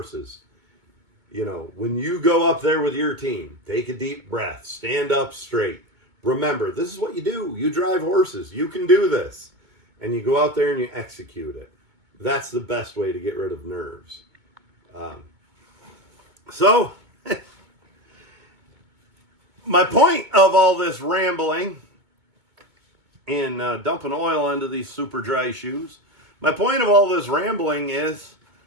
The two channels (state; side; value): late; left; 2.2 ms